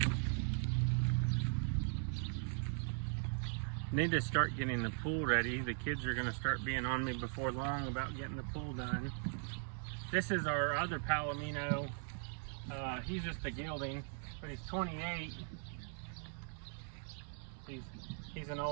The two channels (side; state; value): left; silent; 51 dB below the other